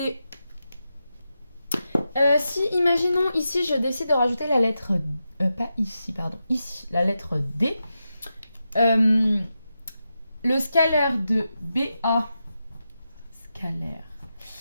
si imaginons ici je décide de rajouter la lettre, pas ici, pardon, ici, la lettre D, le scalaire de BA, scalaire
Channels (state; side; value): inverted; both; correlation -0.89